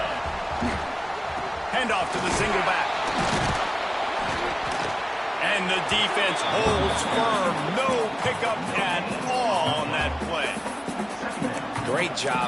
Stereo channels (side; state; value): both; identical; correlation 1.00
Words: Handoff to the single back. And the defense holds firm. No pickup at all on that play. Great